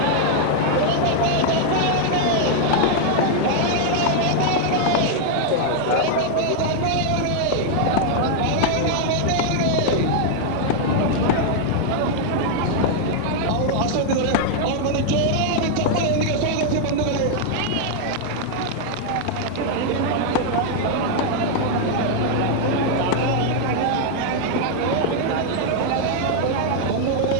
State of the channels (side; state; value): both; different; correlation 0.00